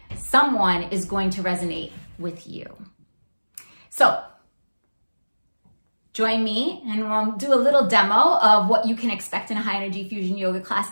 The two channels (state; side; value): inverted; both; correlation -1.00